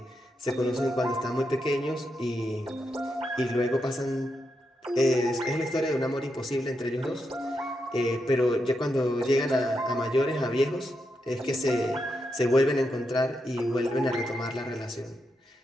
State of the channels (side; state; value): both; normal; correlation 0.84